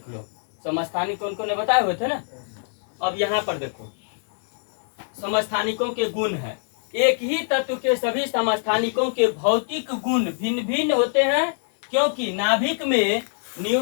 लो, समस्थानिक कौन कौन ने बताए हुए थे ना। अब यहाँ पर देखो समस्थानिकों के गुण है। एक ही तत्व के सभी समस्थानिकों के भौतिक गुण भिन्न भिन्न होते हैं, क्योंकि नाभिक में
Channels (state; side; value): silent; right; digital silence